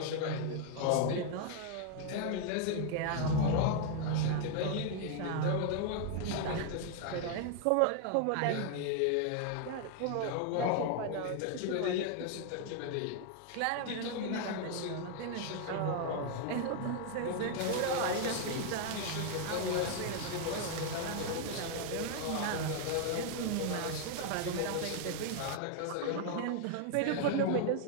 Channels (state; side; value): different; both; correlation 0.00